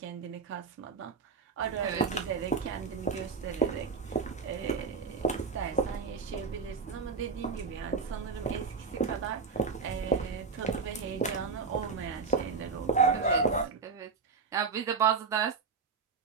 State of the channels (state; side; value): quieter; left; 5.1 dB